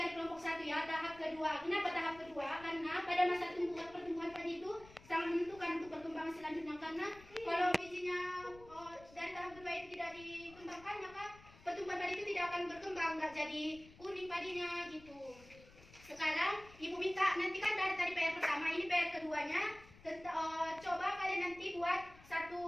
kelompok 1 ya, tahap kedua. Kenapa tahap kedua? Karena pada masa pertumbuhan padi itu sangat menentukan untuk perkembangan selanjutnya. Karena kalau bijinya dari tahap kedua itu tidak dikembangkan, maka pertumbuhan padi itu tidak akan berkembang, nggak jadi kuning padinya gitu. Sekarang ibu minta nanti kan dari tadi PR pertama, ini PR keduanya. Coba kalian nanti buat satu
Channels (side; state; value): left; noise; rumble, 22 dB below the sound